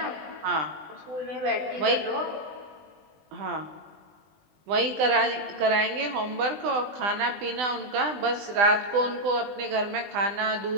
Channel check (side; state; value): left; late; 20 ms